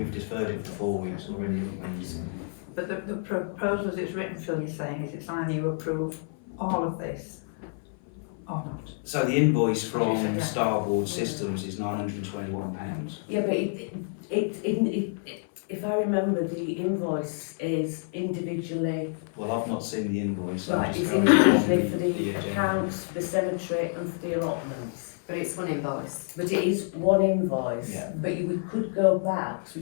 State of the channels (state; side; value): silent; right; 56 dB below the other